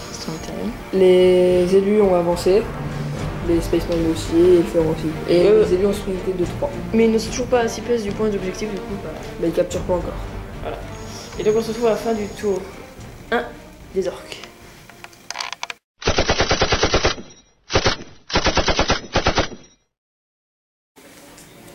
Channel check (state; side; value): identical; both; correlation 1.00